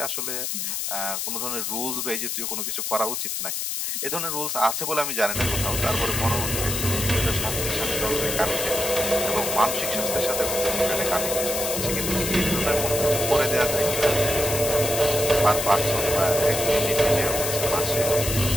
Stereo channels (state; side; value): noise; left; hiss, 2 dB below the sound